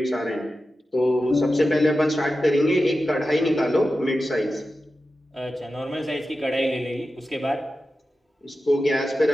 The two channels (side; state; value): both; normal; correlation 0.92